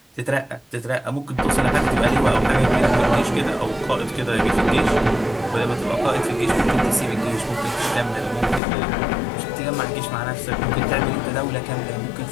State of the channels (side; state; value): right; drops out; at 8.6 s